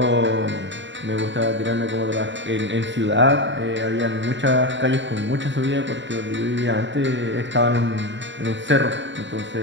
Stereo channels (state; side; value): late; left; 0.54 ms